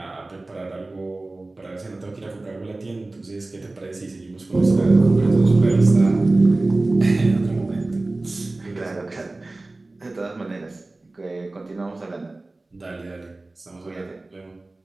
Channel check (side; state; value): left; quieter; 3.0 dB